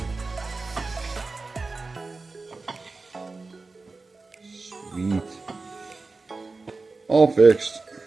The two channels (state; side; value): quieter; left; 3.8 dB